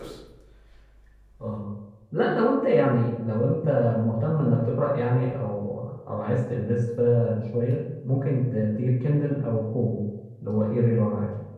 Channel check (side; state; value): both; identical; correlation 1.00